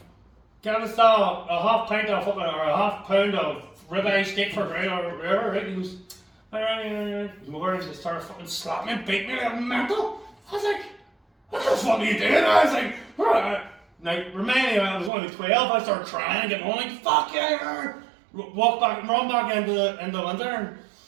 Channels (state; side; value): drops out; left; at 15.1 s